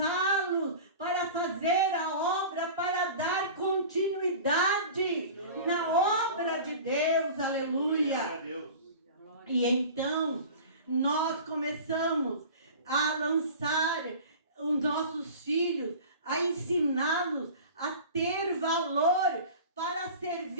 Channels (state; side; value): inverted; both; correlation -0.38